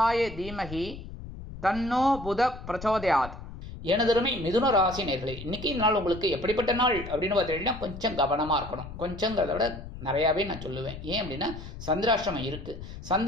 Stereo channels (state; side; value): noise; left; rumble, 12 dB below the sound